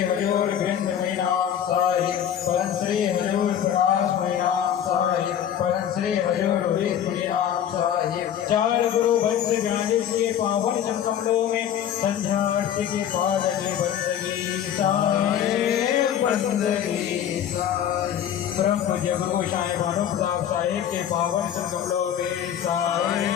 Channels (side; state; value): right; quieter; 9.8 dB